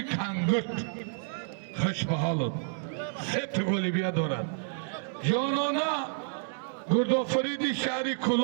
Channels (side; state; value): left; silent; 58 dB below the other